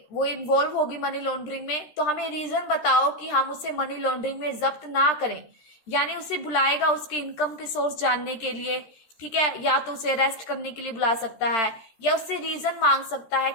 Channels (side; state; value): right; late; 13 ms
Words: इन्वॉल्व होगी मनी लॉन्ड्रिंग में, तो हमें रीजन बताओ कि हम उसे मनी लॉन्ड्रिंग में जब्त ना करें। यानी उसे बुलाएगा उसके इनकम के सोर्स जानने के लिए। ठीक है, या तो उसे अरेस्ट करने के लिए बुला सकता है या उससे रीजन मांग सकता है